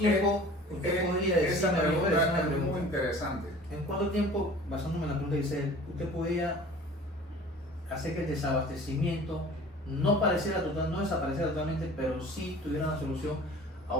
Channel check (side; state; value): both; normal; correlation 0.45